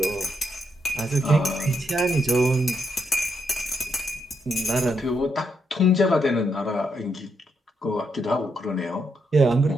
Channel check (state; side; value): normal; both; correlation 0.79